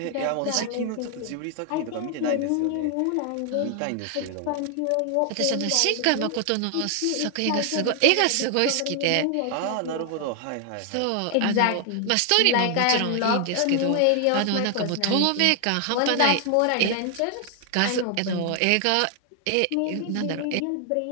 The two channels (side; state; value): both; different; correlation 0.00